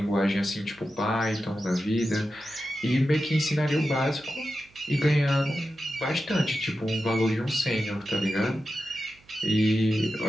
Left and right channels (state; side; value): noise; right; hum, 29 dB below the sound